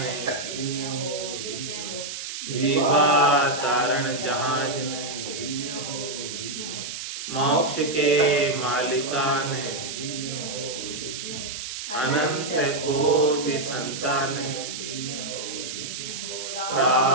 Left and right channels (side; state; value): right; noise; hiss, 7 dB below the sound